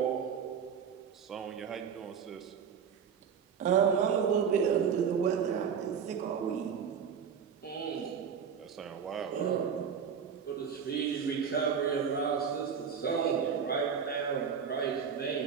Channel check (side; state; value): left; quieter; 7.1 dB